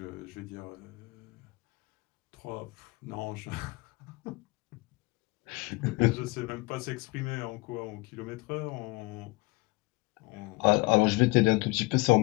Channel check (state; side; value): quieter; right; 23.7 dB